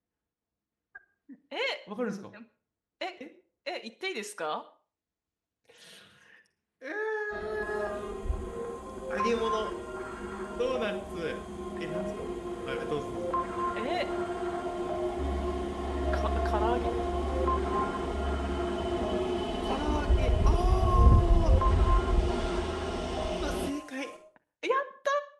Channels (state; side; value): identical; both; correlation 1.00